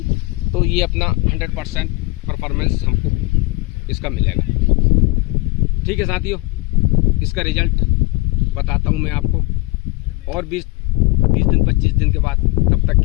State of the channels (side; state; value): right; quieter; 23.8 dB